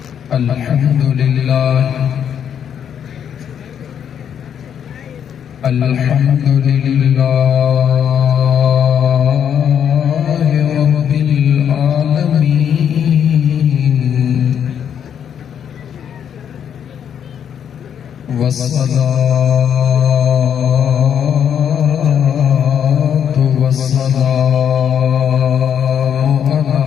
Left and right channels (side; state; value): right; quieter; 8.6 dB